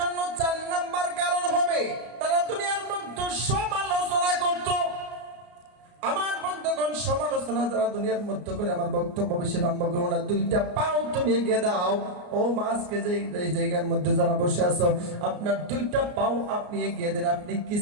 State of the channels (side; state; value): left; late; 33 ms